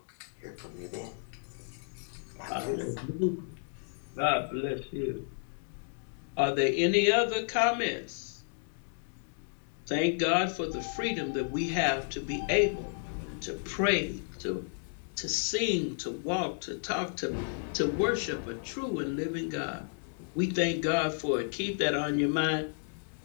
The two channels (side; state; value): right; silent; digital silence